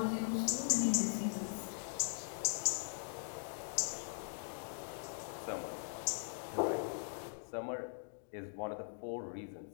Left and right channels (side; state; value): right; silent; digital silence